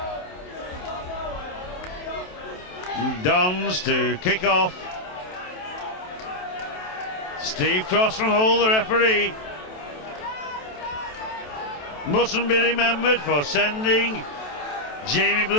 Dons to kick off. Steve Cross from Hull, the referee. mustn't be remembered for sending Jamie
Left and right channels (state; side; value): late; right; 27 ms